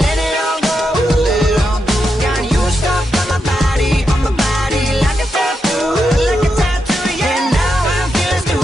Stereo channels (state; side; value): normal; both; correlation 0.85